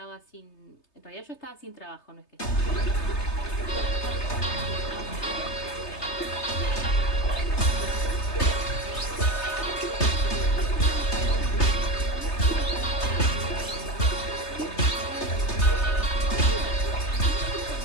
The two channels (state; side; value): late; right; 3.3 ms